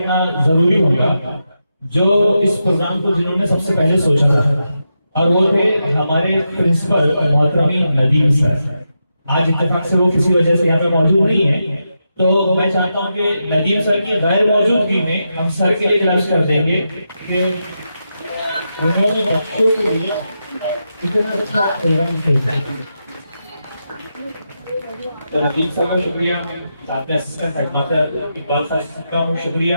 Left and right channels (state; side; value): inverted; both; correlation -0.87